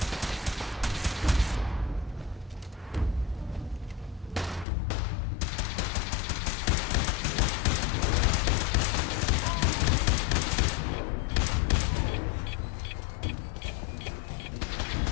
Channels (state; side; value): drops out; right; at 4.7 s